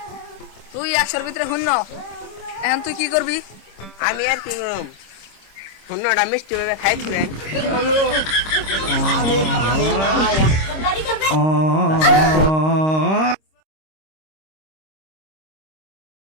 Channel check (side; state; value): right; late; 26 ms